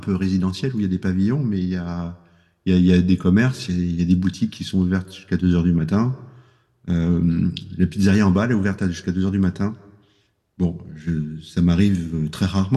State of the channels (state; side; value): identical; both; correlation 1.00